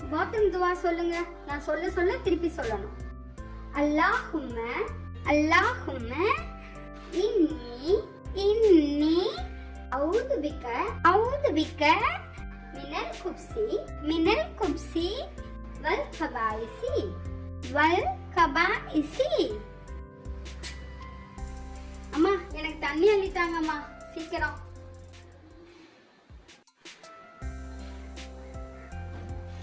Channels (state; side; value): identical; both; correlation 1.00